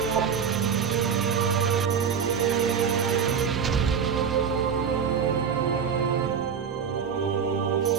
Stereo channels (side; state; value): left; quieter; 7.0 dB